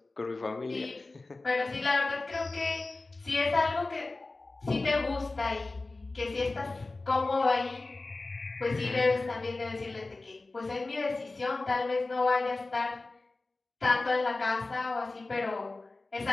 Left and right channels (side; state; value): right; quieter; 3.3 dB